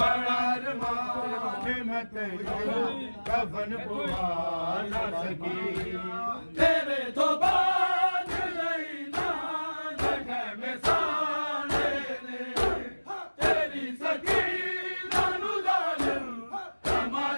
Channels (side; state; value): both; inverted; correlation -1.00